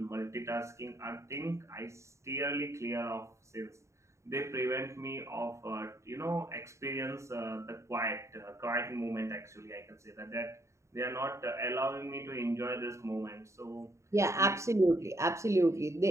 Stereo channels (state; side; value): late; left; 0.14 ms